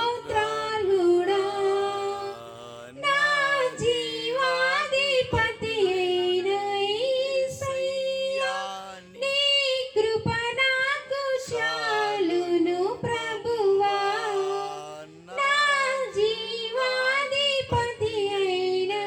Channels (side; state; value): both; identical; correlation 1.00